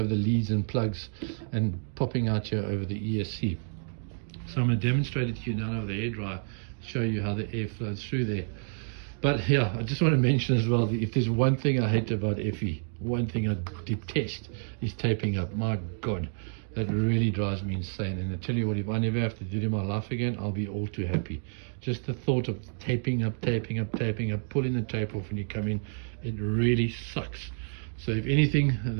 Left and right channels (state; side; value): silent; left; digital silence